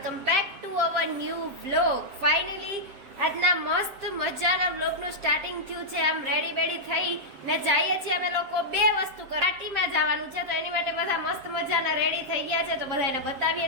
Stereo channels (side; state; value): left; late; 7.5 ms